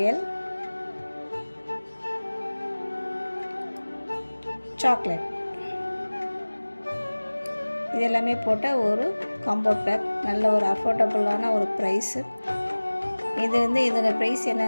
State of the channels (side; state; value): both; inverted; correlation -1.00